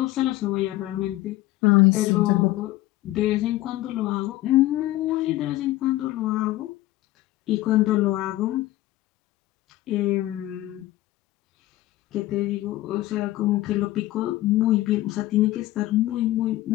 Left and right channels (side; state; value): right; quieter; 16.4 dB